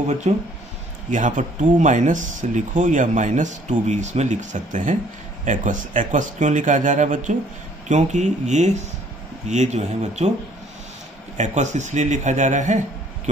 बच्चों, यहाँ पर 2- लिखो या -2 भी इसमें लिख सकते हैं। एक्वस क्यों लिखा जा रहा है बच्चों, क्योंकि ये जो है बच्चों एक्वस इसलिए लिखा जा रहा है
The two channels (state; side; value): normal; both; correlation 0.60